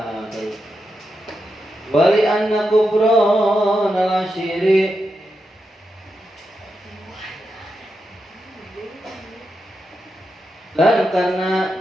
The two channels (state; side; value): normal; both; correlation 0.87